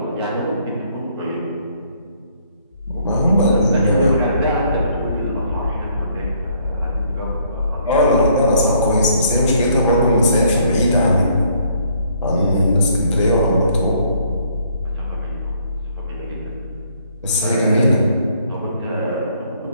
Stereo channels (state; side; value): inverted; both; correlation -0.66